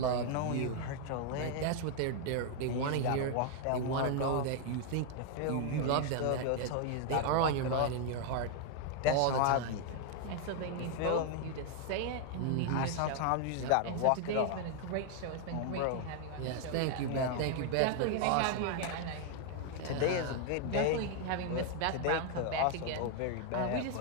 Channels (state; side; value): different; both; correlation 0.00